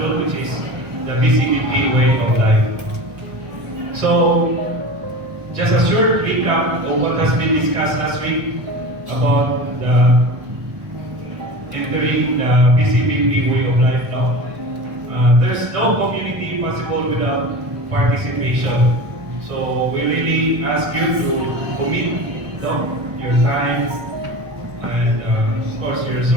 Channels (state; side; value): late; left; 1.1 ms